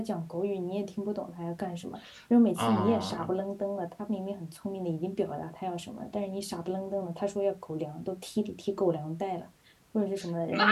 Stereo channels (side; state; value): both; identical; correlation 1.00